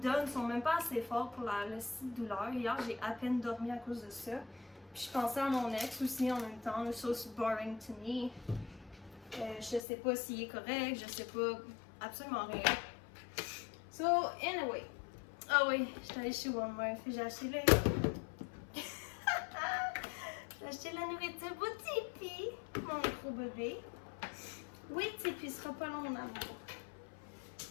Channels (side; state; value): right; drops out; at 9.8 s